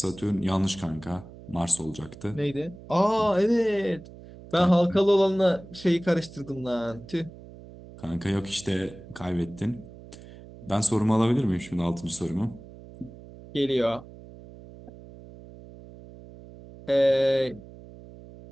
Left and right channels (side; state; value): right; noise; hum, 18 dB below the sound